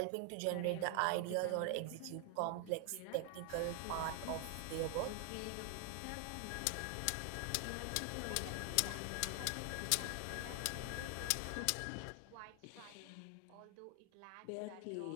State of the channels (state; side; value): different; both; correlation 0.00